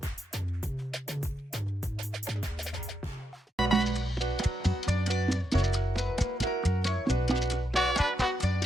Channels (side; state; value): both; normal; correlation 0.83